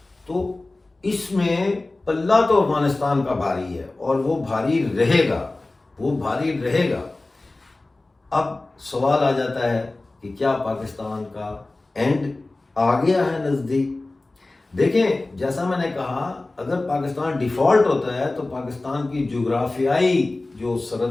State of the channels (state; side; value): quieter; right; 3.0 dB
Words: تو اس میں پلہ تو افغانستان کا بھاری ہے اور وہ بھاری رہے گا، وہ بھاری رہے گا۔ اب سوال آ جاتا ہے کہ کیا پاکستان کا اینڈ آ گیا ہے نزدیک؟ دیکھیں جیسا میں نے کہا، اگر پاکستان ڈیفالٹ ہوتا ہے تو پاکستان کی جغرافیائی جو